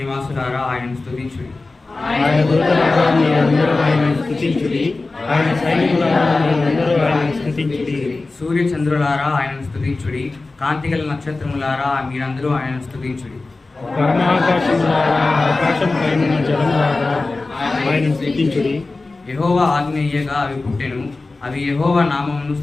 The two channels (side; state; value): right; quieter; 3.4 dB